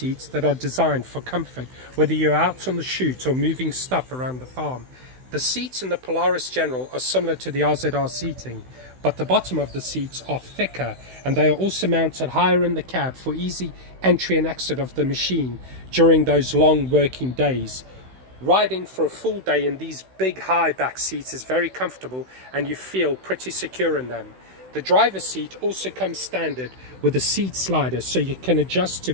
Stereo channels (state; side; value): late; left; 16 ms